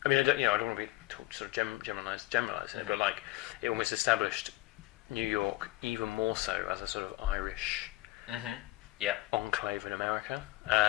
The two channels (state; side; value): quieter; right; 19.3 dB